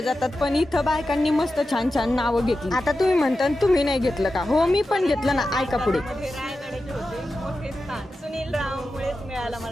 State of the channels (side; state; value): both; normal; correlation 0.92